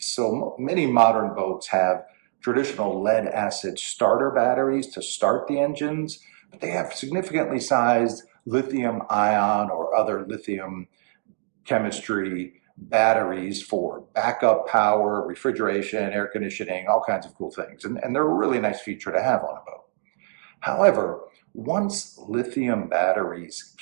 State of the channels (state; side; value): silent; left; digital silence